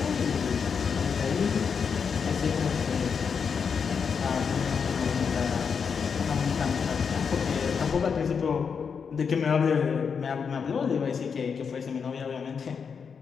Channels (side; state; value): right; quieter; 6.2 dB